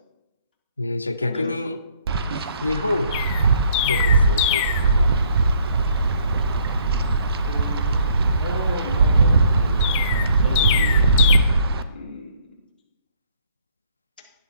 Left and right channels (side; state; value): both; inverted; correlation -0.63